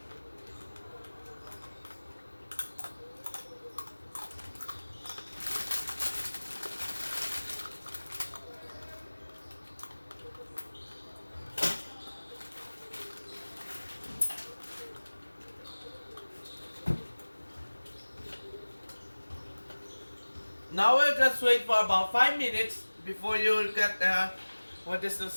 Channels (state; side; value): inverted; both; correlation -1.00